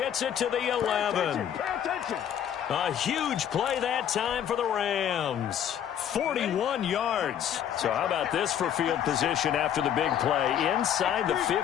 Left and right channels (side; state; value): right; quieter; 9.6 dB